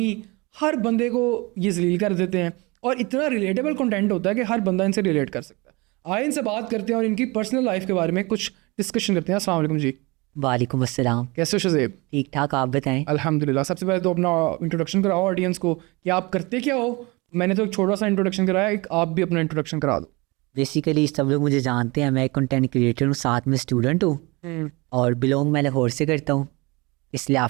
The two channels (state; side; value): quieter; left; 25.4 dB